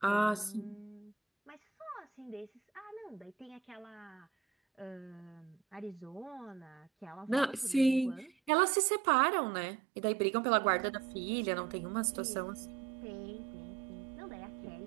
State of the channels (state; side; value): drops out; left; at 8.5 s